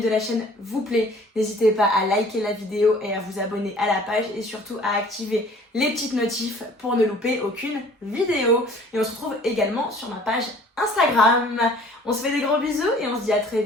la chaîne vous plaît, n'hésitez pas à liker la vidéo et à vous abonner à la page et surtout à activer les petites notifs pour ne louper aucune vidéo. Et on se retrouve également sur ma page Instagram. On se fait des gros bisous et on se dit à très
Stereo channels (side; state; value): both; normal; correlation 0.52